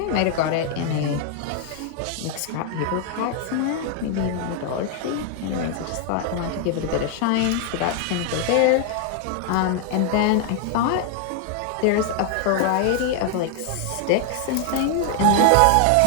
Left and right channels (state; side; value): different; both; correlation 0.00